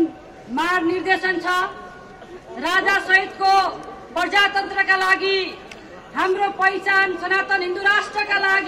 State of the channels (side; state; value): both; identical; correlation 1.00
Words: मार्ग निर्देशन छ राजा सहितको प्रजातन्त्रका लागि, हाम्रो पहिचान सनातन हिन्दू राष्ट्रका